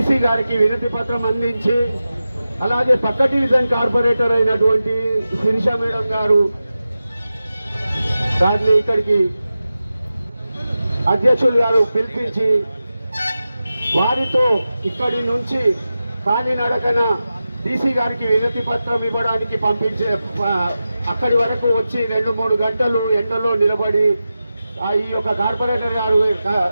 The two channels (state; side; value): inverted; both; correlation -0.93